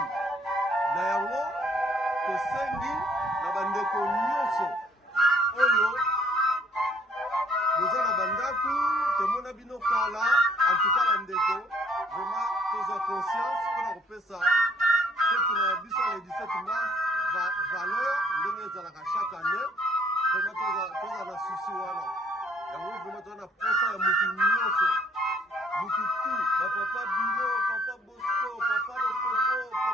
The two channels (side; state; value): both; normal; correlation 0.62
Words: na yango tosengi na bandeko nyonso oyo boza na bandako tomona bino kala antuka bandeko vraiment tozwa conscience mpona kopesa fete na biso le 17 mars valeur ndenge ezalaka chaque année vraiment toza na susi wana yango vraiment toza na posa ya mutu nyonso mutu tu bapapa bino papa Bosco papa Lopopo